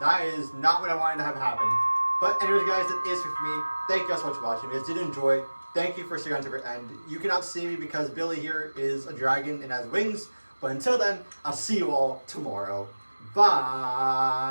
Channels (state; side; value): inverted; both; correlation -1.00